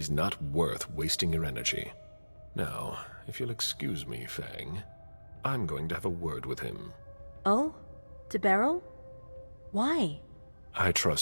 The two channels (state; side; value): inverted; both; correlation -1.00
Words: not worth wasting your energy. Now, if you'll excuse me, Fang, I'm going to have a word with him. Oh? To Beryl? Why? I